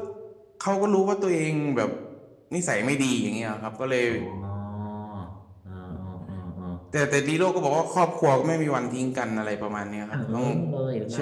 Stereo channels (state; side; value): identical; both; correlation 1.00